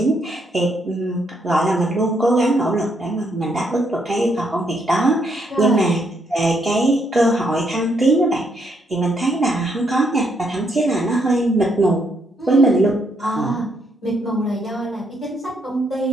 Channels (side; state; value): both; normal; correlation 0.75